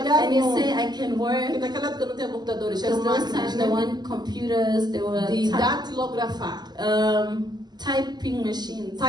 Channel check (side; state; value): left; late; 0.20 ms